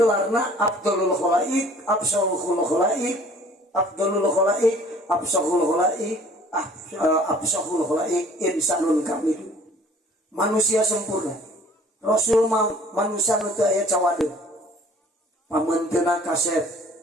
Abdulul Khalaik, Absalul Khalaik, Abdulul Khalaik, Absalul Khalaik, Absalul Khalaik, insanun kamil. Manusia sempurna. Rasul manusia nu teu aya cawadeung. Pamenteuna kasep,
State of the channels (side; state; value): both; normal; correlation 0.53